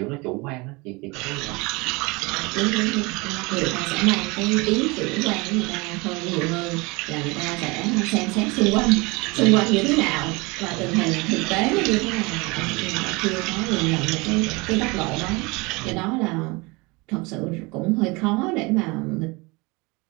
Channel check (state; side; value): quieter; left; 25.7 dB